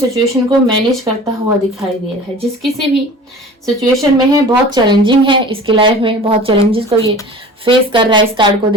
को मैनेज करता हुआ दिखाई दे रहा है। जिस किसी भी सिचुएशन में है, बहुत चैलेंजिंग है इसकी लाइफ में, बहुत चैलेंजेस को ये फेस कर रहा है। इस कार्ड को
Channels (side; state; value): both; normal; correlation 0.40